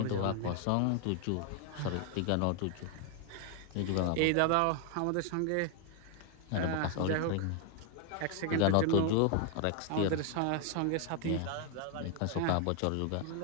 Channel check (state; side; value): different; both; correlation 0.00